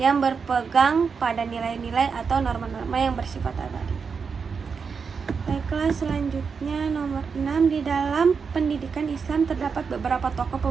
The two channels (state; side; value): quieter; left; 5.7 dB